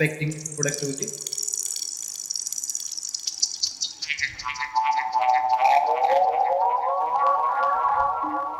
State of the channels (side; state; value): both; identical; correlation 1.00